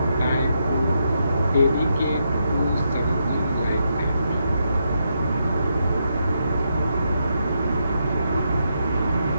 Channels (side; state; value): both; inverted; correlation -0.81